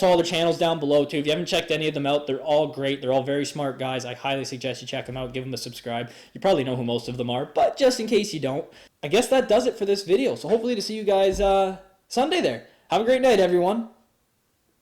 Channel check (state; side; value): identical; both; correlation 1.00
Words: all their channels down below too. If you haven't checked any of them out, they're all great. They're all very smart guys. I highly suggest you check them out. Give them a subscribe. You probably know who most of them are, but just in case you don't, I guess that does it for this video. So hopefully to see you guys Sunday there. Have a great night, everyone.